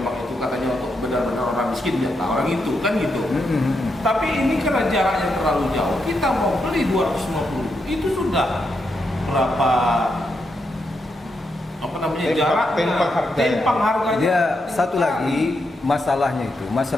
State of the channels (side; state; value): both; normal; correlation 0.82